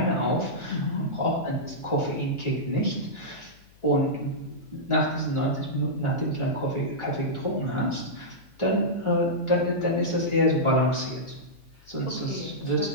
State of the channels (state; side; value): noise; left; hum, 27 dB below the sound